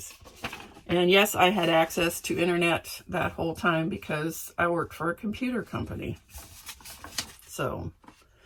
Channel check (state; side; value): identical; both; correlation 1.00